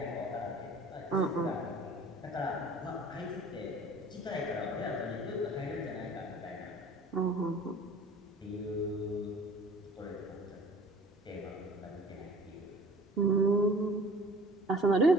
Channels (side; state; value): both; normal; correlation 0.48